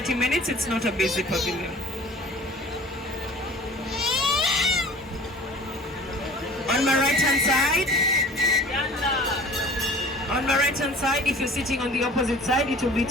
minutes. It's not a basic pavilion. On my right hand side, if you're sitting on the opposite side, it will be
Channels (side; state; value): both; normal; correlation 0.45